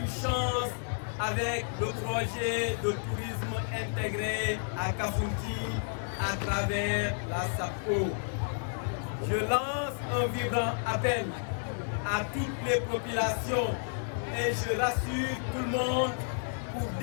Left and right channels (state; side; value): silent; right; digital silence